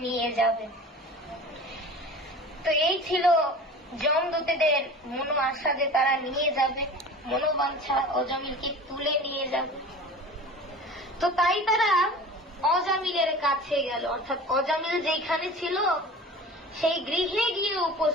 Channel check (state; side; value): normal; both; correlation 0.38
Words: নিয়ে যাবে। তো এই ছিল যমদূতেদের মনো আশা যে তারা নিয়ে যাবে, মনোবাঞ্ছা অজামিলকে তুলে নিয়ে যাবে। তো তাই তারা অজামিলের কাছে গেল, অর্থাৎ অজামিল যেখানে ছিল সেই গৃহে গিয়ে